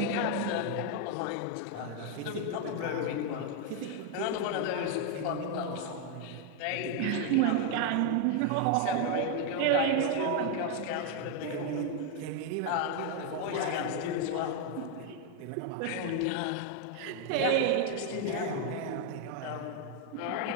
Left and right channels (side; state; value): both; different; correlation 0.01